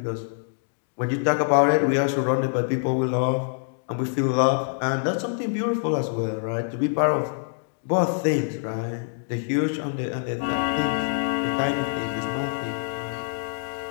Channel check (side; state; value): right; silent; digital silence